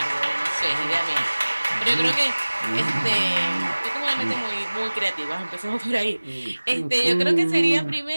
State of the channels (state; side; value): inverted; both; correlation -1.00